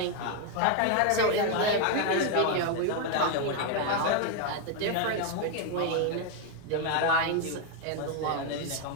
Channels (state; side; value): different; both; correlation 0.01